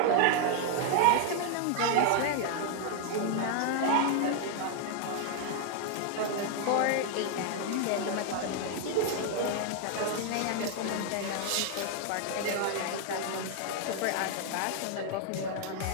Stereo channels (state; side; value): different; both; correlation 0.00